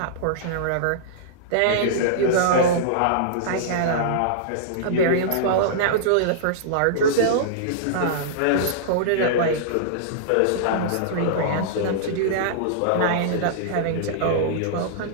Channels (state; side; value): different; both; correlation -0.02